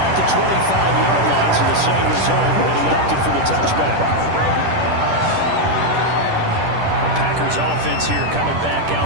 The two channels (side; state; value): left; late; 10 ms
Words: the 25-yard line, so the same result, but he opted for the touchback. The Packers offense here coming back